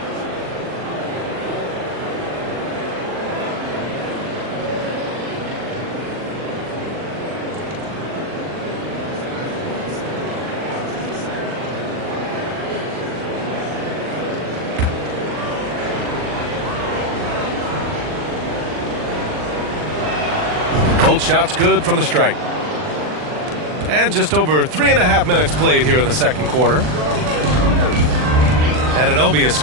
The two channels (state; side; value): late; left; 39 ms